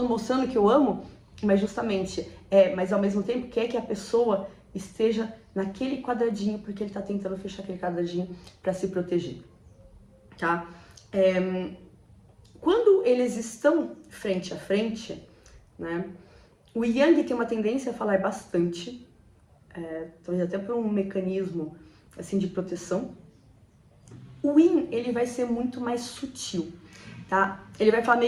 mostrando que eu amo, mas justamente, mas ao mesmo tempo quer que a pessoa esteja naquele quadradinho, porque ele tá tentando fechar aquele quadradinho para se proteger, tá? Quando eles estão frente a frente, né, o Yang tem uma tendência a falar bastante, talvez até por um mecanismo assim de proteção. O Yin, ele vai ser muito mais sutil, tá? Ele vai falar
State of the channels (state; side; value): identical; both; correlation 1.00